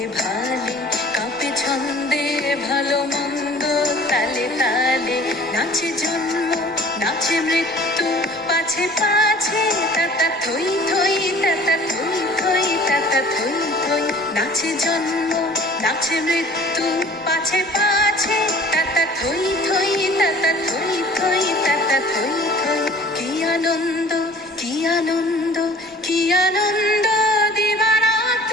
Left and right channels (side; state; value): both; normal; correlation 0.49